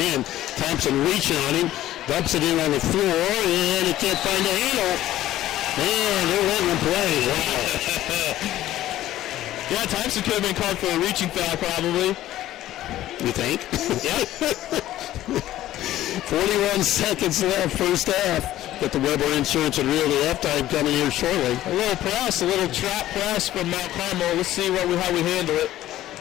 Thompson reaching on him. Dumps it in on the floor, and he can't find the handle. Man, they're letting them play. Wow. Yeah, Thompson could have been called for a reaching foul probably. You think? Yeah. 41 seconds left, first half. Got the Weber Insurance and Realty halftime coming here shortly. A little press, a little trap press from Mount Carmel. Let's see how we handle it.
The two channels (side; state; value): right; quieter; 14.1 dB